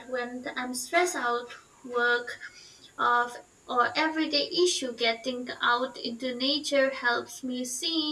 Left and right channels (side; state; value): both; identical; correlation 1.00